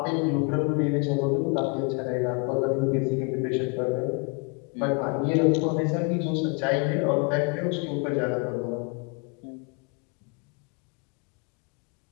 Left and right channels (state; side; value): quieter; right; 32.7 dB